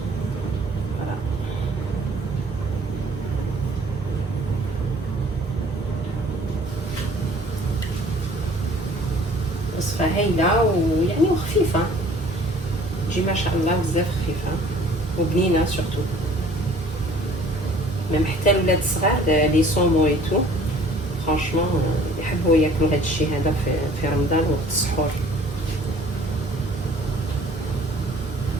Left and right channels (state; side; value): normal; both; correlation 0.52